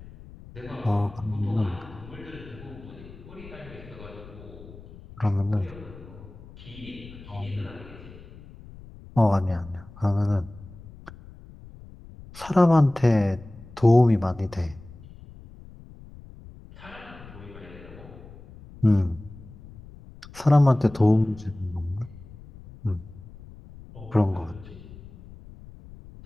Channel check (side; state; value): left; noise; rumble, 18 dB below the sound